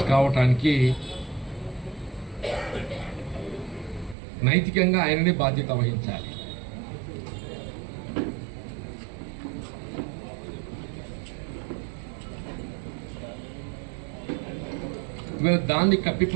కావటానికి నైతికంగా ఆయననే బాధ్యత వహించాలి. దాన్ని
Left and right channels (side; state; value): left; drops out; at 4.2 s